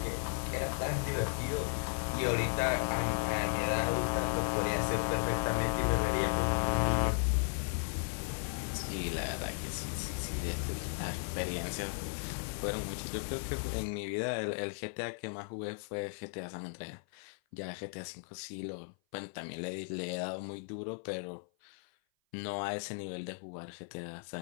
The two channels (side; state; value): right; silent; 54 dB below the other